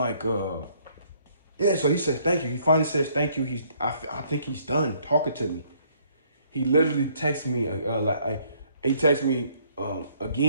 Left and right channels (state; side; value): inverted; both; correlation -0.65